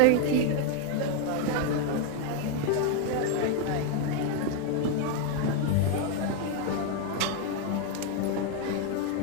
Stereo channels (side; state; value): both; different; correlation 0.01